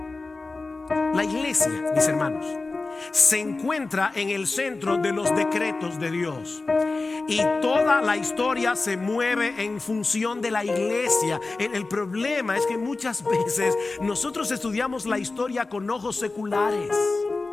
La iglesia, mis hermanos, se encuentra en el centro de los decretos de Dios, y toda la historia se mueve en función de la iglesia. El problema es que muchas veces nosotros estudiamos la historia con ojos seculares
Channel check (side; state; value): right; quieter; 3.5 dB